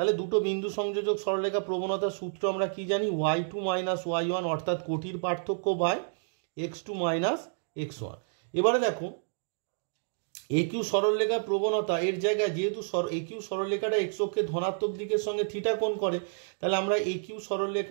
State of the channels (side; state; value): left; silent; digital silence